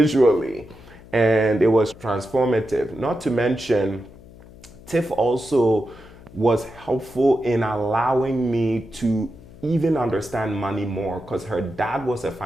and it was transformative. Not to mention, Tiff also was helpful in allowing me to even understand money more because her dad was a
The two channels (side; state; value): left; noise; hum, 20 dB below the sound